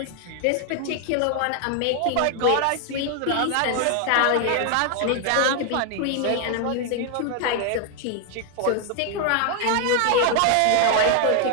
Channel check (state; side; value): different; both; correlation 0.00